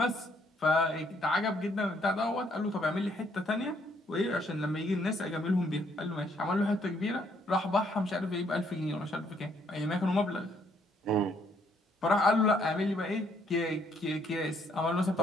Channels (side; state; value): both; normal; correlation 0.68